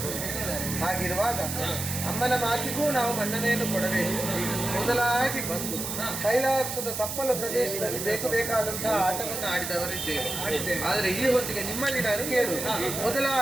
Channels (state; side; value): noise; right; hiss, 5 dB below the sound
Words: ಹಾಗಿರುವಾಗ ಅಮ್ಮನ ಮಾತಿಗೂ ನಾವು ಮನ್ನಣೆಯನ್ನು ಕೊಡಬೇಕು. ಮೊದಲಾಗಿ ಬಂದು ಕೈಲಾಸದ ತಪ್ಪಲ ಪ್ರದೇಶದಲ್ಲಿ ಬೇಕಾದಂತಹ ಆಟವನ್ನು ಆಡಿದವರಿದ್ದೇವೆ. ಆದರೆ ಈ ಹೊತ್ತಿಗೆ ನಿಮ್ಮಲ್ಲಿ ನಾನು ಕೇಳು,